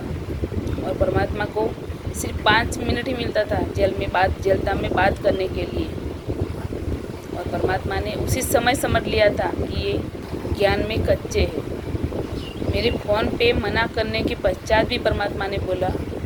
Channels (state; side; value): identical; both; correlation 1.00